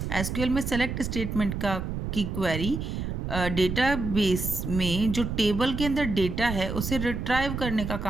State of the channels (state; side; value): noise; right; rumble, 4 dB below the sound